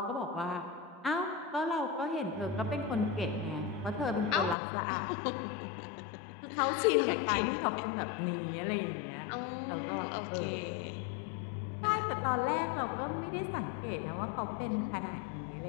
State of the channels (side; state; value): right; drops out; at 4.5 s